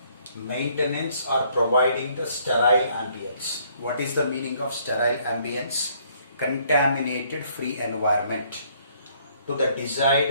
Maintenance or providing the sterile ambience. What is the meaning of sterile ambience? Contaminated free environment to the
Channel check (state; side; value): inverted; both; correlation -0.65